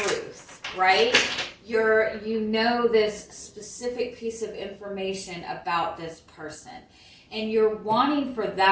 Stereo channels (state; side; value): identical; both; correlation 1.00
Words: right? You know this specific piece of information about this person, and you're wanting for